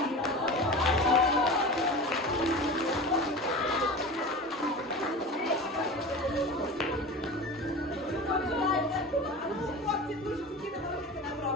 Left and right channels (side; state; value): both; normal; correlation 0.32